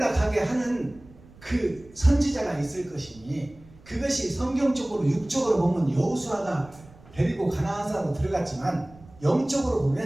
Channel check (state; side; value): noise; right; rumble, 23 dB below the sound